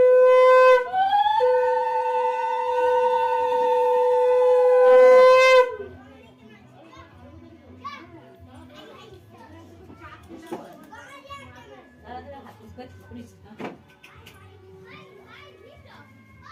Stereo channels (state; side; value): identical; both; correlation 1.00